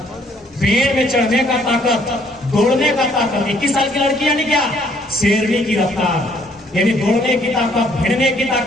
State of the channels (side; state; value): both; normal; correlation 0.64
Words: पेड़ में चढ़ने का ताकत, दौड़ने का ताकत। 21 साल की लड़की यानी क्या? शेरनी की रफ्तार, यानी दौड़ने की ताकत, भिड़ने की